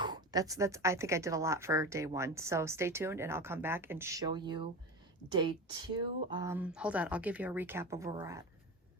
that's I think I did a lot for day one. So stay tuned and I'll come back and show you day two. Hold on, I'll give you a recap of where we're at.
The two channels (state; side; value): normal; both; correlation 0.26